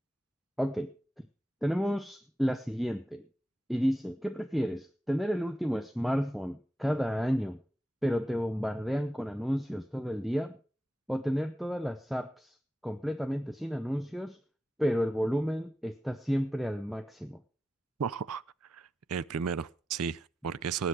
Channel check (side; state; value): both; normal; correlation 0.90